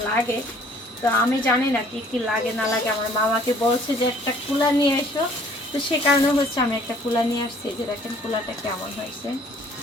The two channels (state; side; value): normal; both; correlation 0.57